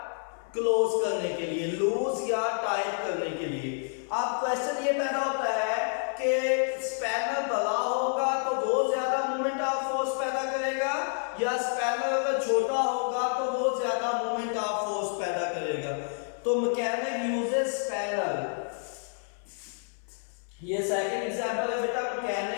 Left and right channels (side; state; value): right; silent; 59 dB below the other